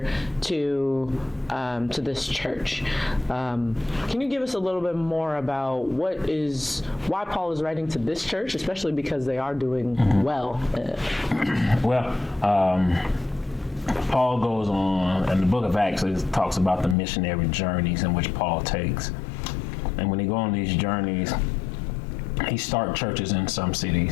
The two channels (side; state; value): right; drops out; at 16.9 s